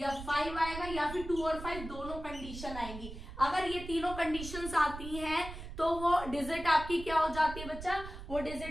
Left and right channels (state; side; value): noise; right; rumble, 10 dB below the sound